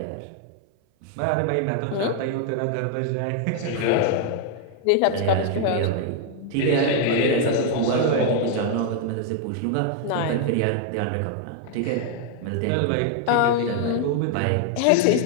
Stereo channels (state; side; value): different; both; correlation 0.00